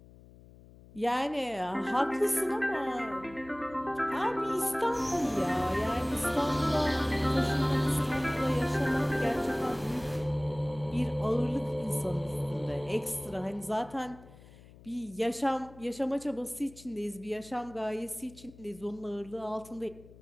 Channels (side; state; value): left; noise; hum, 21 dB below the sound